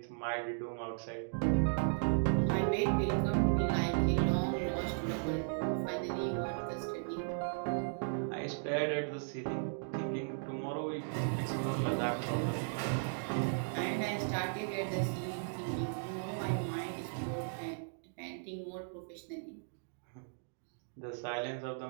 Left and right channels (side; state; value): left; silent; digital silence